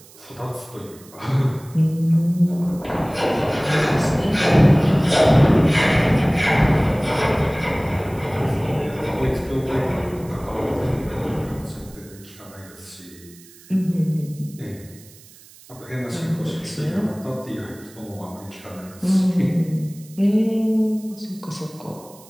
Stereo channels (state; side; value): noise; right; hiss, 23 dB below the sound